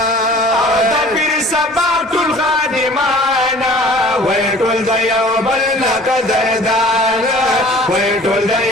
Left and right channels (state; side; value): normal; both; correlation 0.48